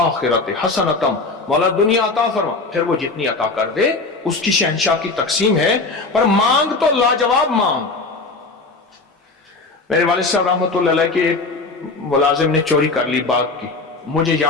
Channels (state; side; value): quieter; right; 3.6 dB